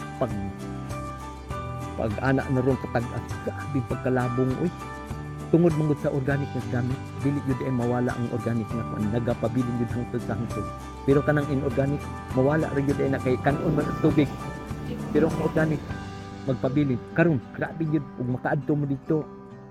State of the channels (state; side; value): identical; both; correlation 1.00